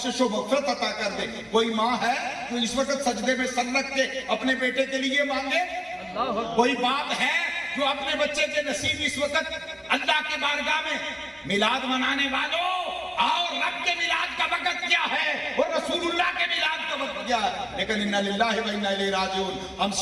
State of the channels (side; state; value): both; identical; correlation 1.00